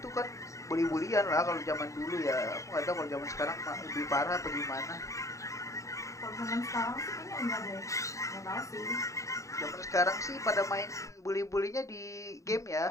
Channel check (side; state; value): right; late; 0.15 ms